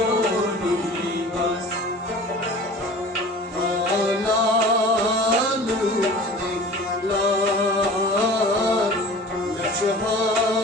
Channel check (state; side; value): normal; both; correlation 0.41